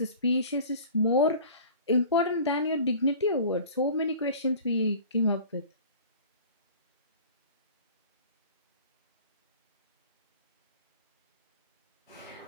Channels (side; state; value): both; inverted; correlation -0.42